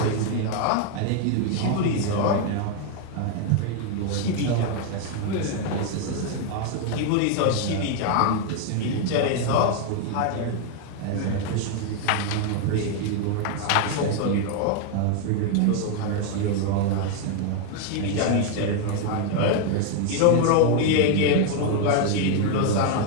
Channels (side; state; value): both; different; correlation 0.01